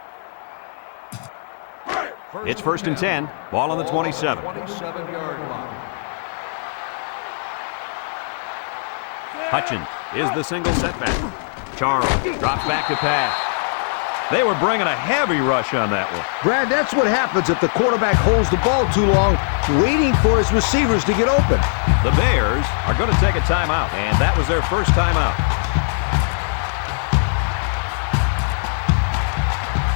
It's 1st and 10. Ball on the 27. 27-yard line. Hutchins is the single setback. Charles drops back to pass. They were bringing a heavy rush on that one. Brad, that's what happens if the quarterback holds the ball too long, waiting for his receivers to get open. The Bears are going to take a timeout, and that was their first timeout.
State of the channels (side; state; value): right; silent; 66 dB below the other